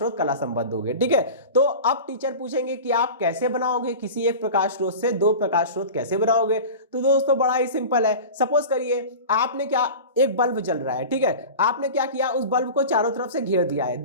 कला संबद्ध होंगे। ठीक है, तो अब टीचर पूछेंगे कि आप कैसे बनाओगे, किसी एक प्रकाश स्रोत से दो प्रकाश स्रोत कैसे बनाओगे? तो दोस्तों बड़ा ही सिंपल है। सपोज करिए आपने क्या, एक बल्ब जल रहा है। ठीक है, आपने क्या किया, उस बल्ब को चारों तरफ से घेर दिया है,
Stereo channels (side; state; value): both; inverted; correlation -0.33